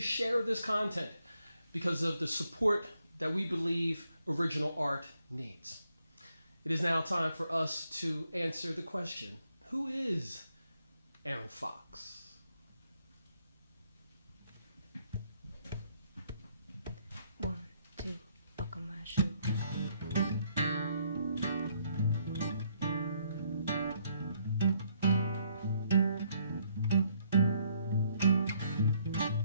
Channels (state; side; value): inverted; both; correlation -0.71